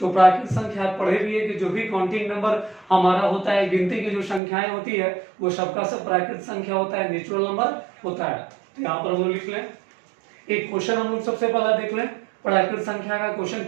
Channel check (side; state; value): left; drops out; at 4.4 s